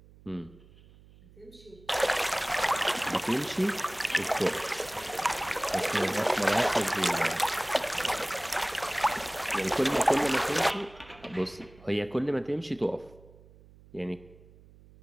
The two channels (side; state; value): right; noise; hum, 24 dB below the sound